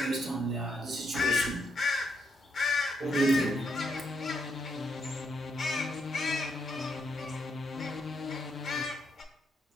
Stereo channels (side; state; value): both; normal; correlation 0.77